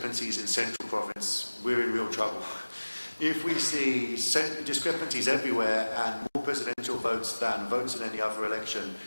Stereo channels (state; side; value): inverted; both; correlation -1.00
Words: in Central Province, we're in real trouble. If we see discrepancies everywhere and more presidential votes than votes in any other election